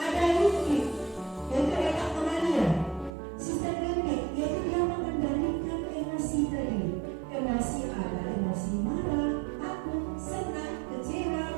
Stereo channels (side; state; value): left; drops out; at 3.1 s